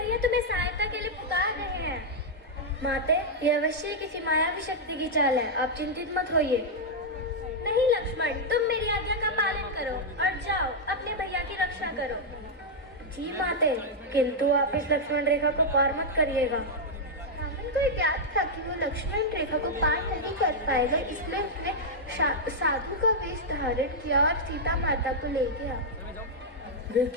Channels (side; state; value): both; normal; correlation -0.04